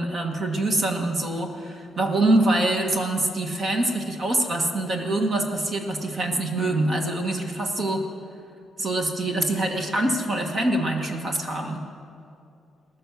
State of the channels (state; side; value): normal; both; correlation 0.78